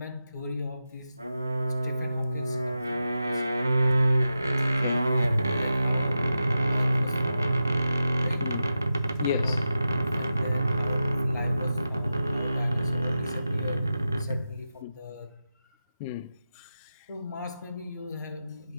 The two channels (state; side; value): inverted; both; correlation -0.91